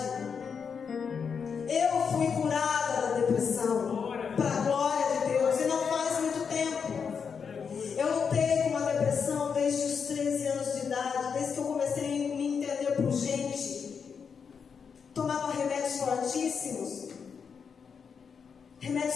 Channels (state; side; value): quieter; right; 6.3 dB